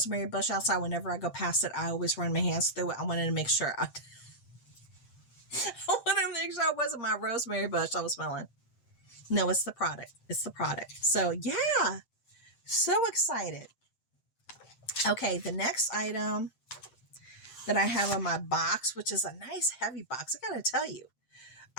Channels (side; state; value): right; late; 7.7 ms